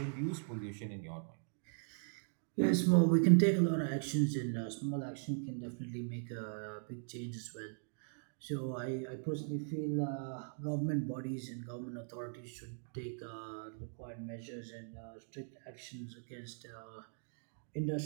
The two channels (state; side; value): silent; left; digital silence